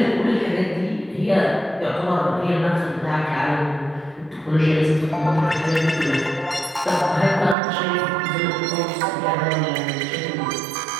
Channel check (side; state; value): left; drops out; at 7.6 s